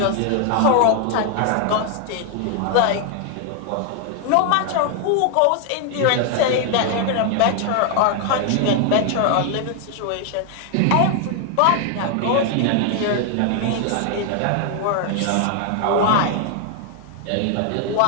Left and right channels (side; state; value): both; different; correlation 0.00